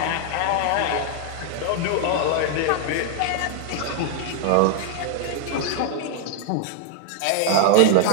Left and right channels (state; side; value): different; both; correlation 0.00